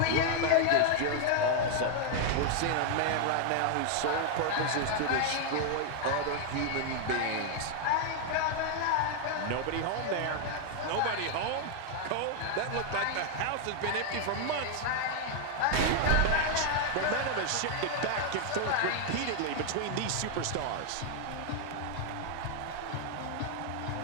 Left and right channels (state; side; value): different; both; correlation 0.00